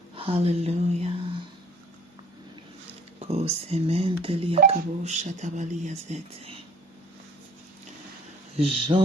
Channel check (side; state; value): both; normal; correlation 0.53